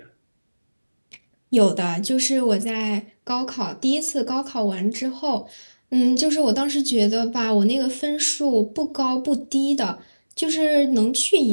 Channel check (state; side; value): inverted; both; correlation -1.00